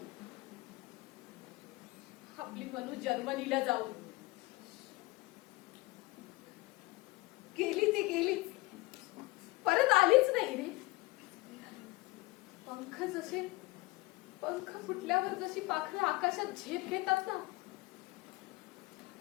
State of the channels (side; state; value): right; quieter; 21.7 dB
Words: आपली मनू जर्मनीला जाऊन. गेली ती गेलीच, परत आलीच नाही रे. पंख फुटल्यावर जशी पाखरं आकाशात झेप घेतात ना,